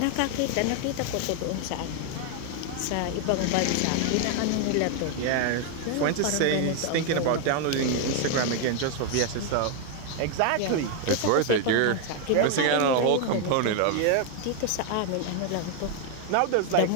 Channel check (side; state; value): both; different; correlation 0.01